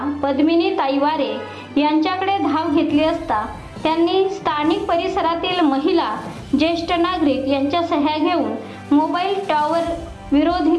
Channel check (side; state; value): both; identical; correlation 1.00